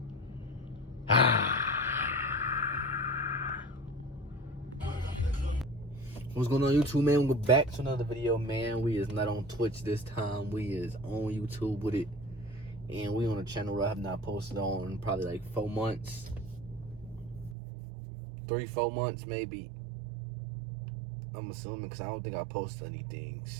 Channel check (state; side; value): drops out; left; at 17.6 s